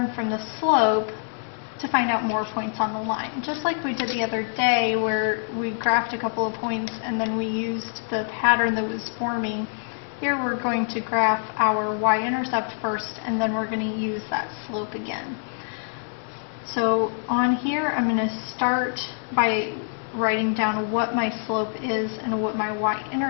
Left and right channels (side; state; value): right; silent; 62 dB below the other